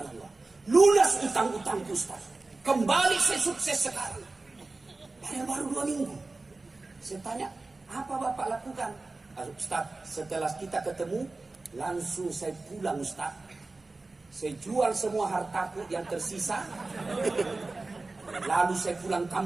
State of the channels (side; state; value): left; quieter; 3.4 dB